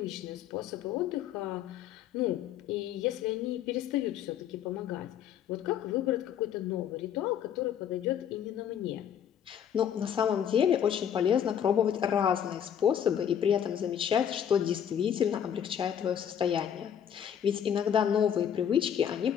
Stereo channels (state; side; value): quieter; right; 9.0 dB